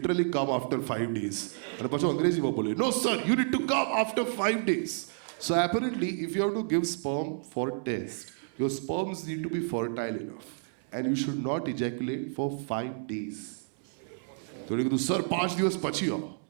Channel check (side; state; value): left; silent; 58 dB below the other